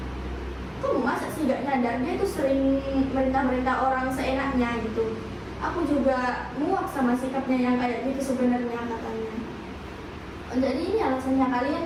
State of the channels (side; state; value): both; identical; correlation 1.00